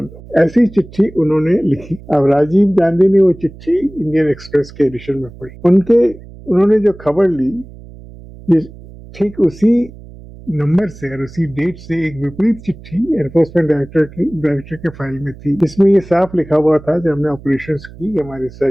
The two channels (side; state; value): right; noise; hum, 18 dB below the sound